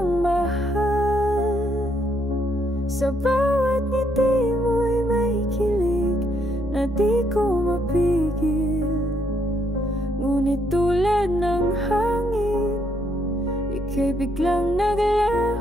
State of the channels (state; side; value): normal; both; correlation 0.73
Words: mahal. Sa bawat ngiti mo'y may kilig na di ko mapigil. Ngunit tulad ng hangin, ika'y biglang